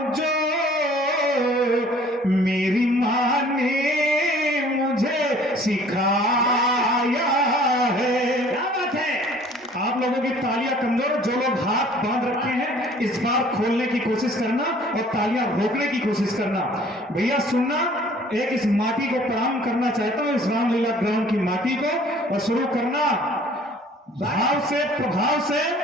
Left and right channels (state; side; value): normal; both; correlation 0.53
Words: जो, मेरी माँ ने मुझे सिखाया है। क्या बात है। आप लोगों की तालियां कमजोर, जो लोग हाथ बांध रखे हैं इस बार खोलने की कोशिश करना और तालियां रोकने की कोशिश करना। भैया सुनना, एक इस माटी को प्रणाम करना चाहता हूं, इस रामलीला ग्राउंड की माटी को, और शुरू करना भाव से, प्रभाव से।